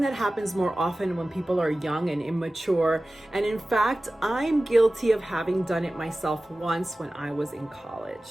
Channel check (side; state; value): both; normal; correlation 0.96